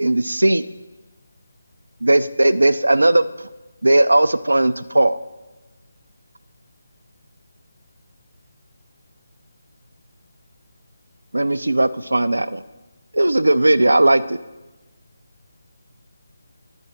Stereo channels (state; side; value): inverted; both; correlation -0.99